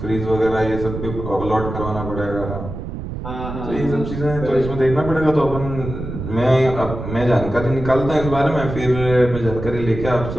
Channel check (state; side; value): noise; right; rumble, 8 dB below the sound